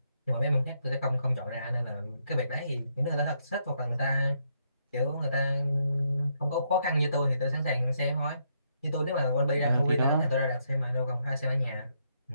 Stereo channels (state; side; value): inverted; both; correlation -0.76